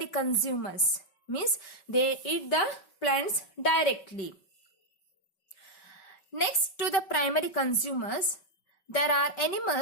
consumers, means they eat the plants directly. Next to the primary consumers, there are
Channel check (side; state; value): right; late; 5.3 ms